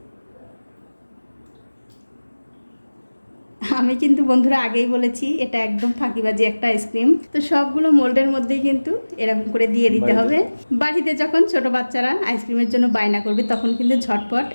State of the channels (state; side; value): inverted; both; correlation -1.00